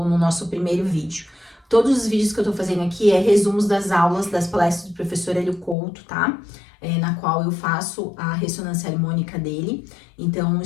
no nosso primeiro vídeo. Todos os vídeos que eu tô fazendo aqui é resumos das aulas, das palestras do professor Hélio Couto, tá? Na qual eu faço a ressonância harmônica dele. Então,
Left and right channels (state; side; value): drops out; right; at 5.8 s